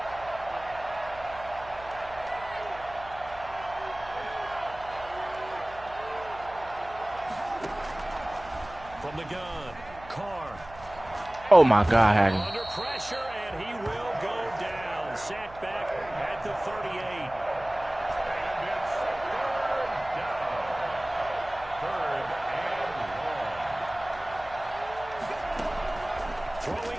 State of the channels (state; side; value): noise; right; hum, 18 dB below the sound